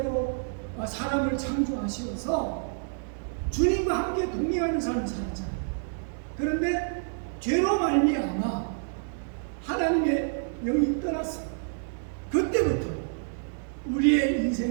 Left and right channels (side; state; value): left; silent; digital silence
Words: 사람을 창조하시어서 주님과 함께 동행하는 삶을 살았잖아요. 그런데 죄로 말미암아 하나님의 영이 떠났어요. 그때부터 우리의